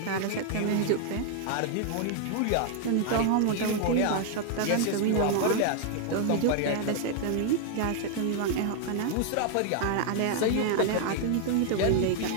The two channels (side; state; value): both; different; correlation 0.00